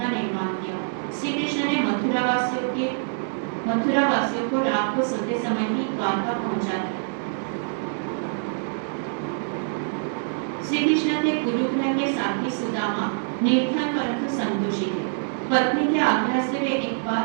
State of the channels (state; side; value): silent; left; digital silence